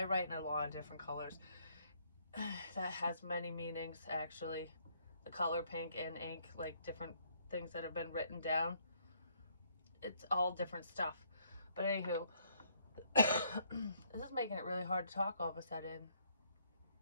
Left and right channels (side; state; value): both; inverted; correlation -0.68